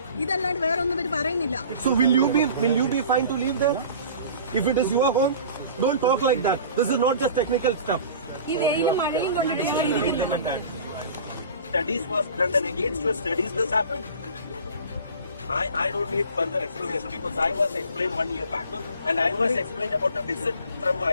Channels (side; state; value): both; inverted; correlation -0.43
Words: ഇതല്ലാണ്ട് വേറെ ഒന്നും ഇവര് പറയുന്നില്ല. So will you be fine to leave there if it is your home? Don't talk like that. This is not just technical stuff. ഈ വെയിലും മഴയും കൊണ്ടിട്ട് Studies was done and against your studies this happened. I don't need further explanation because I was explained 1 year back and I was explained about a visit from